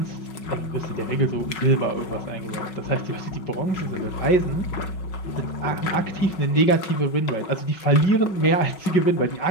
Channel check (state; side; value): late; right; 5.4 ms